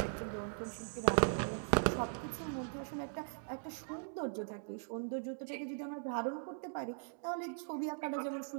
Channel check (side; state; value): left; silent; digital silence